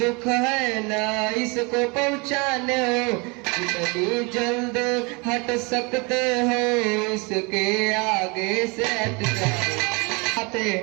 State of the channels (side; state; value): left; quieter; 29.1 dB